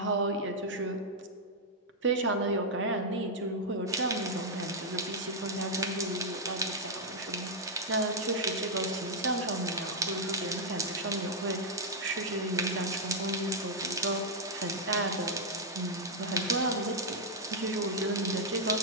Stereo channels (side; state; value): both; normal; correlation -0.05